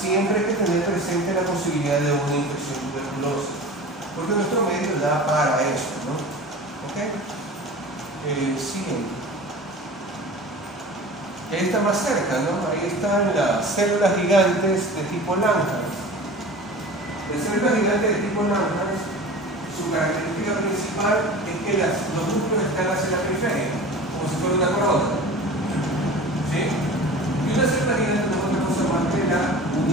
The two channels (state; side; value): normal; both; correlation 0.37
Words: siempre hay que tener presente la posibilidad de una infección tuberculosa, porque nuestro medio da para eso, ¿no? ¿Ok? Siguiente. Ahí está más cerca, ¿no? Ahí están las células gigantes de tipo Langerhans. Las células gigantes de tipo Langerhans, su característica principal es que los núcleos están hacia la periferia, como si fuera una corona. ¿Sí? Y una célula gigante no es otra cosa más que la